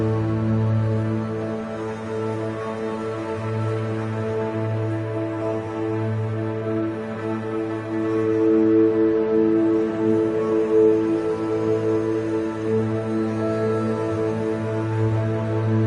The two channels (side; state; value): both; identical; correlation 1.00